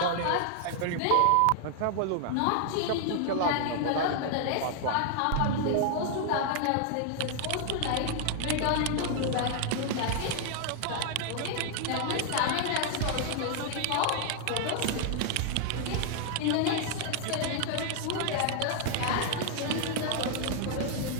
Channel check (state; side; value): different; both; correlation 0.00